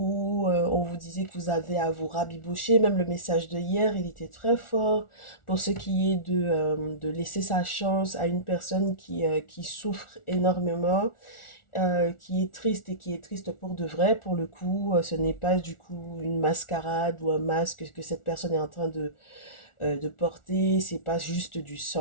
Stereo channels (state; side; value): late; right; 1.4 ms